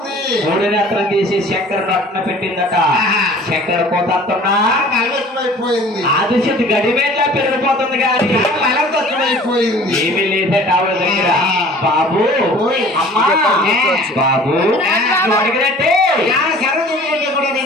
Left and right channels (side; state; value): both; normal; correlation 0.48